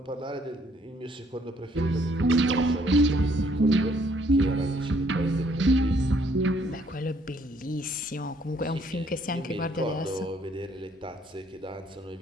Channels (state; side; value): normal; both; correlation 0.65